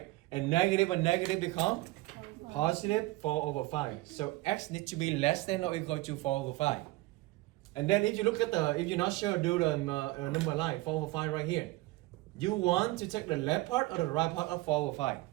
And negative become positive 4 over 5. So x needs to be less than or equal to 4 over 5. And then if you look at if you're not sure, do the number line, 4 over 5 right here. You want to take the left part or the right part of 4 over 5?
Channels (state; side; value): quieter; left; 19.9 dB